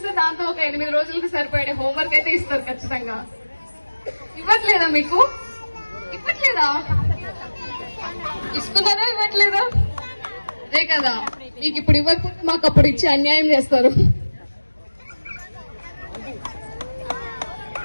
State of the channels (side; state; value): both; inverted; correlation -1.00